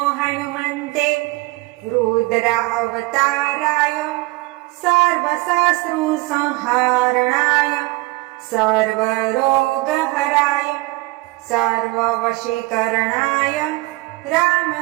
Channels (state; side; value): quieter; left; 22.2 dB